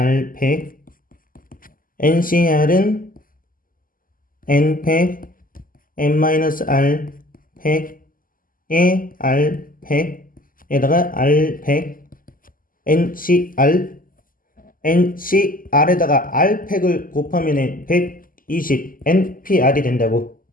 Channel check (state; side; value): late; right; 0.41 ms